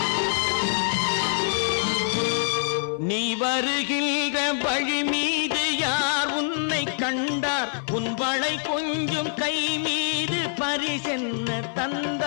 கொஞ்சம் கை மீது பரிசென்ன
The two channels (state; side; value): silent; right; 62 dB below the other